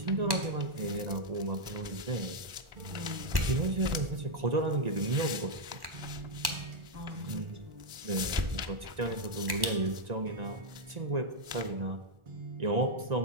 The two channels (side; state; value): left; late; 1.4 ms